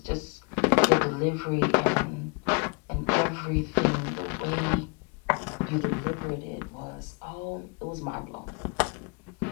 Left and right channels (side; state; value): right; quieter; 32.9 dB